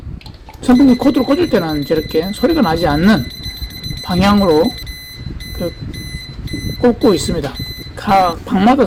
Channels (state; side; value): identical; both; correlation 1.00